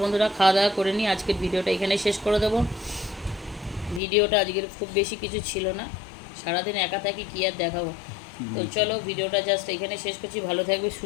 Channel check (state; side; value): drops out; right; at 4.0 s